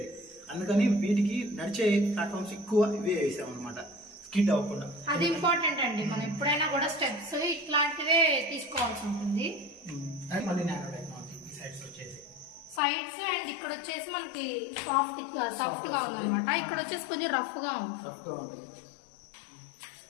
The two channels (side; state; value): right; drops out; at 12.8 s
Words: అందుకని వీటికి నడిచే ప్లాట్ఫామ్స్ ఎక్కువ ఇవే వేసాం అనమాట, స్కిడ్ అవ్వకుండా. అది ఇంపార్టెంట్ అండి, మనం ఎప్పుడైనా కూడా స్టెప్స్ ఇట్లాంటివే తీసుకోవాల్సి ఉంటుంది. అండ్ మళ్ళీ నానో టెక్నాలజీ సైడ్స్ వచ్చేసి సైడ్స్, అండ్ ఇక్కడ వచ్చేసి మనకి సాఫ్ట్ గా ఉంది అనమాట. ఇక్కడ వచ్చేసి కొంచెం రఫ్ గా ఉంది.